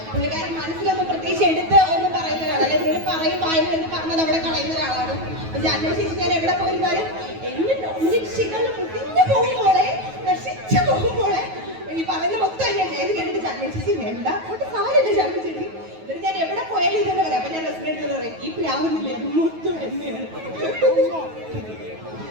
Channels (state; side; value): late; left; 9.3 ms